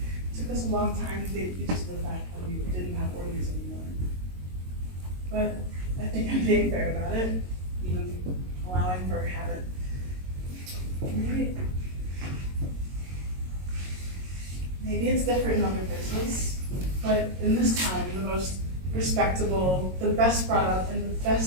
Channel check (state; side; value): late; left; 22 ms